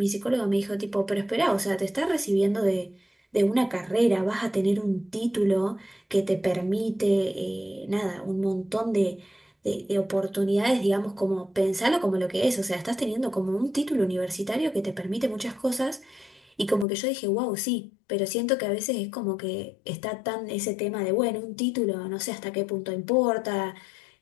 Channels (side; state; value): right; drops out; at 16.9 s